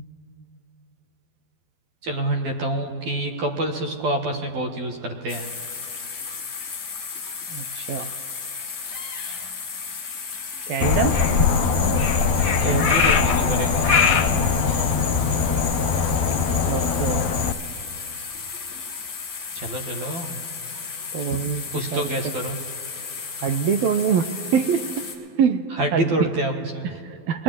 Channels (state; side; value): late; left; 12 ms